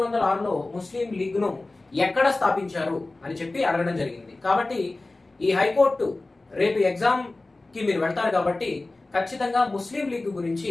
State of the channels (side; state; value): right; quieter; 3.1 dB